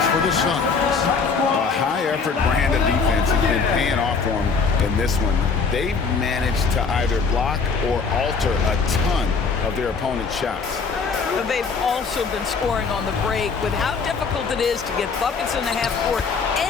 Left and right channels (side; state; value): right; quieter; 5.1 dB